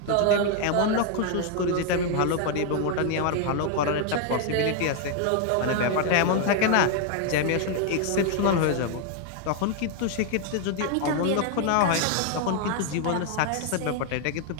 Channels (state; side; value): different; both; correlation 0.00